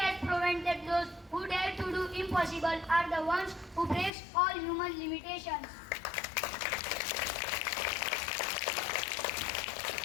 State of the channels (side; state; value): right; drops out; at 4.1 s